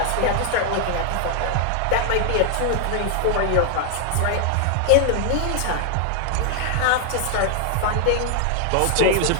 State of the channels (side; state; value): both; different; correlation 0.00